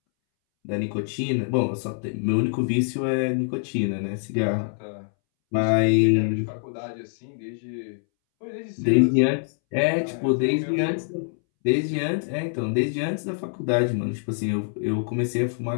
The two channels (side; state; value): right; silent; 62 dB below the other